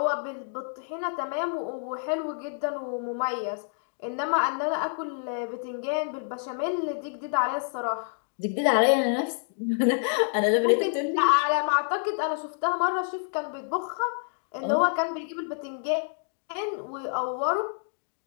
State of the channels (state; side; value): silent; right; digital silence